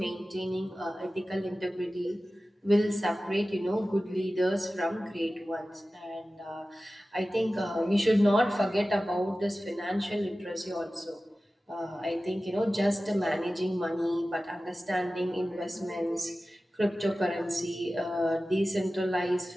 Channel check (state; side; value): normal; both; correlation 0.95